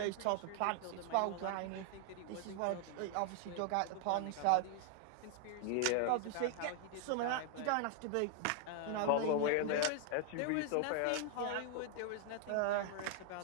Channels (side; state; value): both; different; correlation 0.00